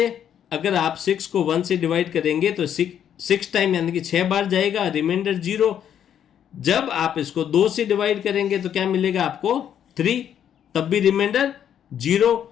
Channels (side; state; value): right; quieter; 9.4 dB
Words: अगर आप 6 को 1 से डिवाइड करेंगे तो 6 टाइम यानी कि 6 बार जाएगा, रिमाइंडर 0। जब आप इसको 2 से डिवाइड करेंगे तो क्या मिलेगा आपको? 3, तब भी रिमाइंडर 0।